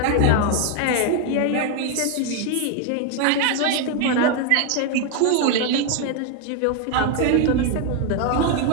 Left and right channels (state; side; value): different; both; correlation 0.01